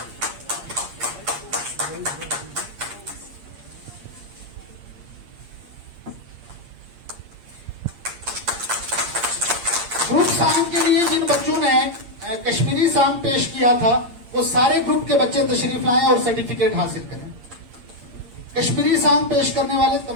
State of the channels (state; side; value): late; left; 8.6 ms